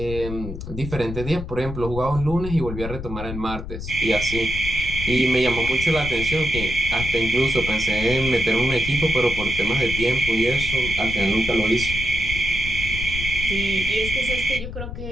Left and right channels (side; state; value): left; noise; rumble, 7 dB below the sound